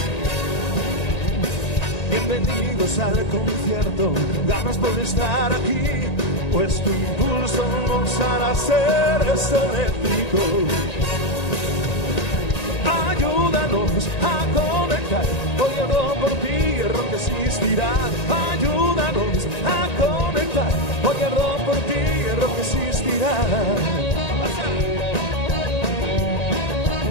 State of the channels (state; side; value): late; right; 1.9 ms